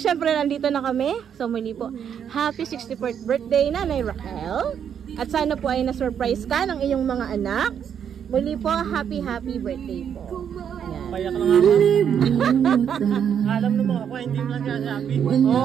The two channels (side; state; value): left; quieter; 8.3 dB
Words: nandito na kami. So muli po, happy 64th birthday Nanay Raquel. At sana po ay na-surprise ka ng iyong mga anak. Muli po, happy birthday po. Ayan. Payak lang ako. Alam naman ako, hindi mo lang sasabi.